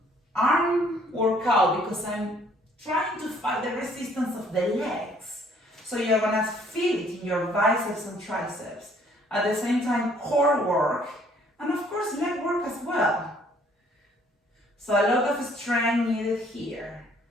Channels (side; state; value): both; normal; correlation 0.61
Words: arm workout because I'm trying to fight the resistance of the legs. So you're gonna feel it in your biceps and triceps. At the same time, core work, and of course leg work as well. So a lot of strength needed here.